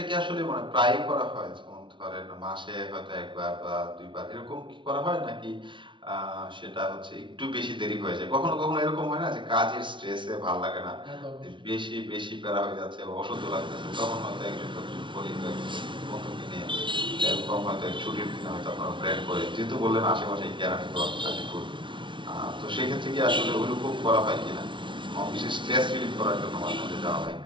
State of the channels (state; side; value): late; left; 0.24 ms